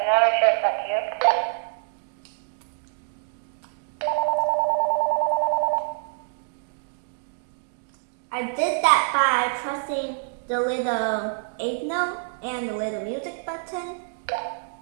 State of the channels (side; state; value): left; silent; digital silence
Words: not sure if that's you. I did that by pressing the little 8 note and the little music button.